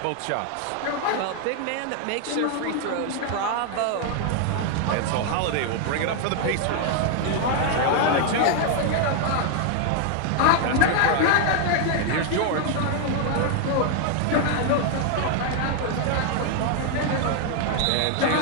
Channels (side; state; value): both; different; correlation 0.00